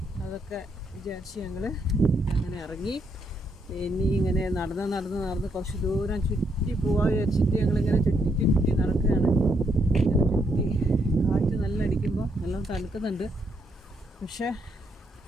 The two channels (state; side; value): normal; both; correlation 0.76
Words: അതൊക്കെ വിചാരിച്ച് ഞങ്ങൾ അങ്ങനെ ഇറങ്ങി. ഇനി ഇങ്ങനെ നടന്ന് കുറച്ച് ദൂരം ചുറ്റി പോകാൻ വിചാരിച്ചിട്ട് ഞങ്ങളിങ്ങനെ ചുറ്റി നടക്കുകയാണ്. ഇങ്ങനെ ചുറ്റി, കാറ്റ് നല്ല അടിക്കുമ്പോൾ നല്ല തണുക്കുന്നുണ്ട്. പക്ഷേ